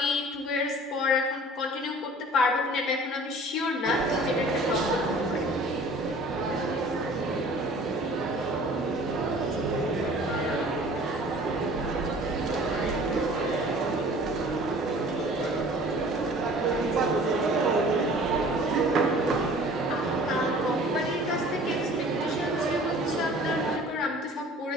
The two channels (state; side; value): normal; both; correlation 0.47